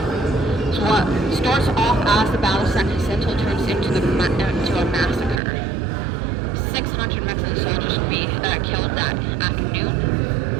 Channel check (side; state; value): left; drops out; at 5.4 s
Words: So what starts off as the Battle of San Jacinto turns into a massacre. 600 Mexican soldiers will be killed that afternoon.